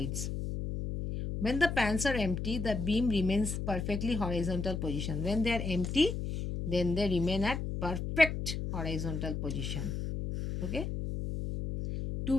When the pans are empty, the beam remains perfectly horizontal position. When they are empty, then they remain at perfect horizontal position. Okay. To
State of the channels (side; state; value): left; noise; hum, 3 dB below the sound